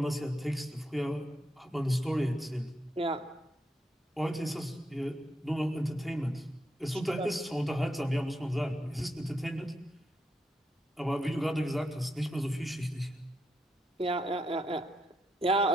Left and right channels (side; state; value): both; normal; correlation 0.81